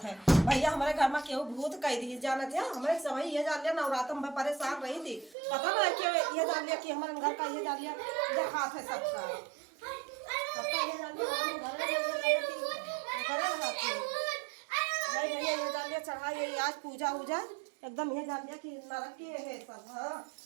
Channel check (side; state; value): left; drops out; at 5.4 s